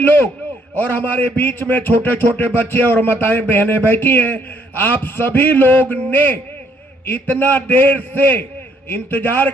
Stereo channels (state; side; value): normal; both; correlation 0.68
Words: और हमारे बीच में छोटे छोटे बच्चे और माताएं बहनें बैठी हैं। आप सभी लोग ने इतना देर से इंतजार